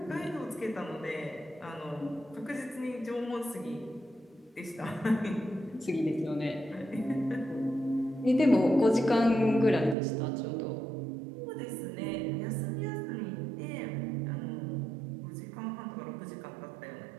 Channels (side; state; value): left; drops out; at 10.0 s